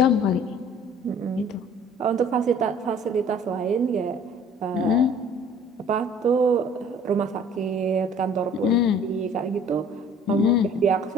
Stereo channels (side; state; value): both; normal; correlation 0.51